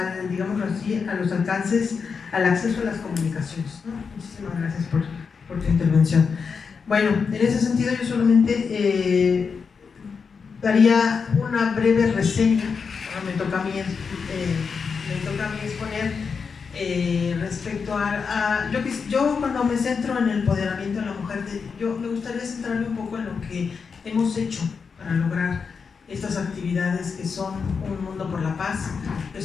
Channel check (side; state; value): right; quieter; 5.6 dB